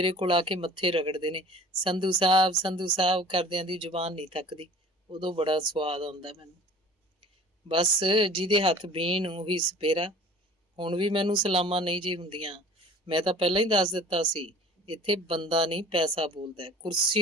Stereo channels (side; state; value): both; normal; correlation 0.46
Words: ਕੋਲ ਆ ਕੇ ਮੱਥੇ ਰਗੜਦੇ ਨੇ, ਸੰਧੂ ਸਾਹਿਬ ਕਰਦਿਆਂ ਦੀ ਜ਼ੁਬਾਨ ਨਹੀਂ ਥੱਕਦੀ। ਉਦੋਂ ਬੜਾ ਸਵਾਦ ਆਉਂਦਾ ਮੈਨੂੰ। ਬਸ ਜਿਹਦੇ ਹੱਥ ਬੀਨ ਉਹੀ ਸਪੇਰਾ। ਹੁਣ ਵੀ ਮੈਨੂੰ ਸਲਾਮਾਂ ਨਹੀਂ ਜੀ ਹੁੰਦੀਆਂ। ਮੈਂ ਤਾਂ ਪਹਿਲਾਂ ਹੀ ਦੱਸ ਦਿੱਤਾ ਸੀ, ਇੱਥੇ ਬੰਦਾ ਨਹੀਂ ਪੈਸਾ ਬੋਲਦਾ।